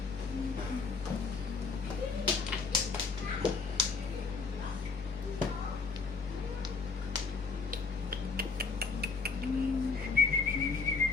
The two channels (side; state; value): right; quieter; 4.6 dB